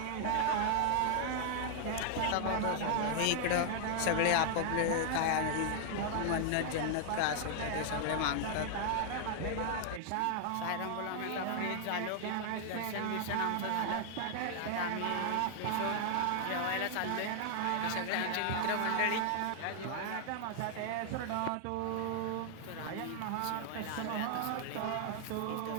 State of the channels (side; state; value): both; different; correlation 0.00